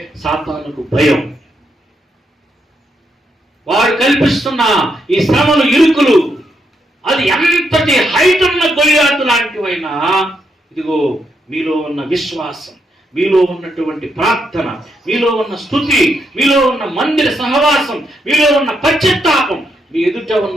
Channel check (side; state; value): both; normal; correlation 0.79